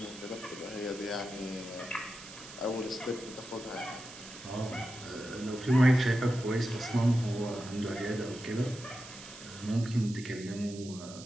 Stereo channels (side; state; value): right; noise; hiss, 15 dB below the sound